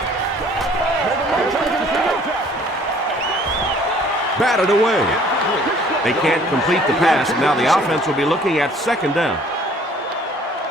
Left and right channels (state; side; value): normal; both; correlation 0.56